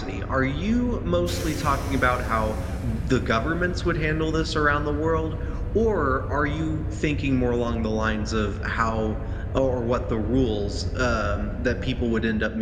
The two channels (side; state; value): both; identical; correlation 1.00